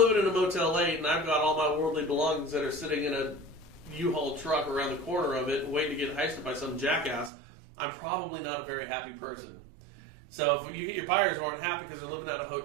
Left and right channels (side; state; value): left; drops out; at 7.3 s